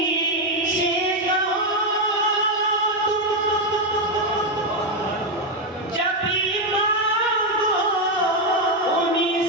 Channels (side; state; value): both; normal; correlation 0.05